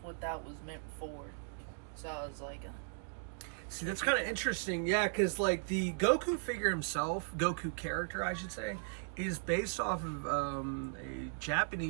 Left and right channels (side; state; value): left; silent; digital silence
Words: that was meant for. So I was like... See, that's kind of interesting. Yeah, because like the Goku figure himself, Goku character, I should say, is based off of a